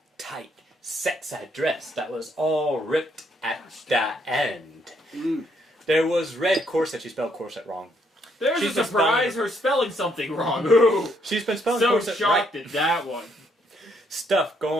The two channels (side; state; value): both; normal; correlation 0.72